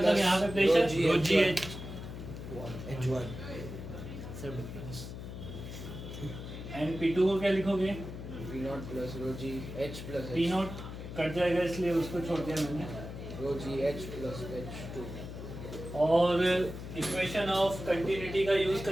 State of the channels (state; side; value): noise; left; hum, 9 dB below the sound